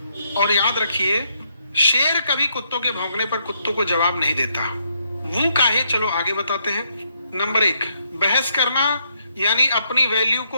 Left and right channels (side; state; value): both; inverted; correlation -0.75